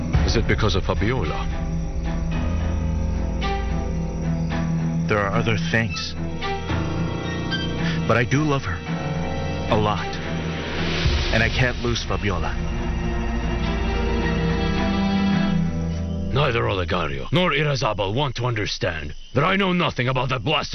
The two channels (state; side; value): identical; both; correlation 1.00